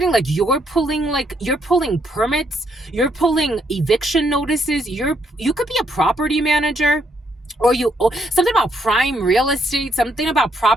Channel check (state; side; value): normal; both; correlation 0.73